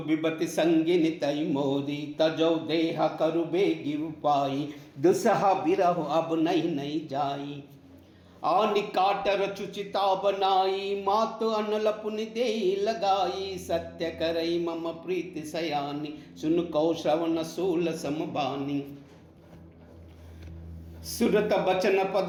संगिनी तई मोरी, तजौ देह करु बेगी उपाई, दुसहा बिरह अब नहीं जाई, आनि काट रचुचिता बनाई, मातु अनल पुनि देई लगाई, सत्य करई मम प्रीति सयानी, सुन कौ श्रवण सूल समबानी, सुरत बचन पद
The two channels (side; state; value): both; identical; correlation 1.00